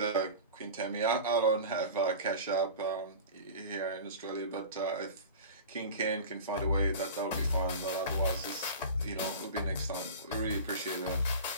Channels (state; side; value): inverted; both; correlation -0.34